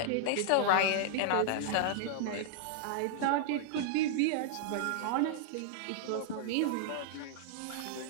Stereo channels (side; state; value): both; different; correlation -0.01